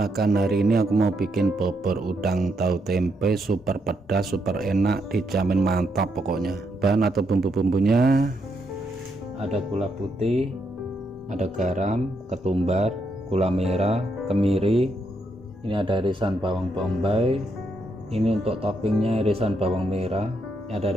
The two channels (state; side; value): normal; both; correlation 0.79